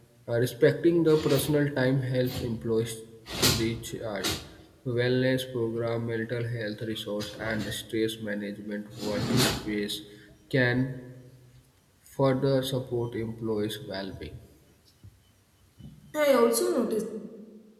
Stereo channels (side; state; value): both; identical; correlation 1.00